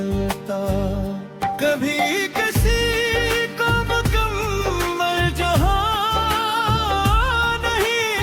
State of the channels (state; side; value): identical; both; correlation 1.00